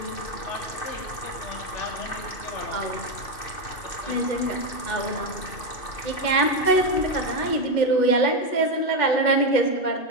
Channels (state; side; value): late; right; 2.6 ms